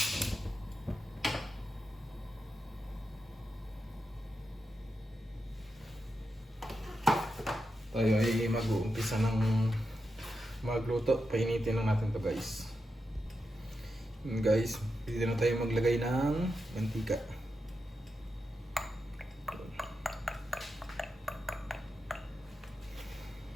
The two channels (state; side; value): normal; both; correlation 0.88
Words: Tayo ay mag-uumpisa ng magluto. Painitin lang natin to guys. Guys, dito na tayo maglagay ng mantika.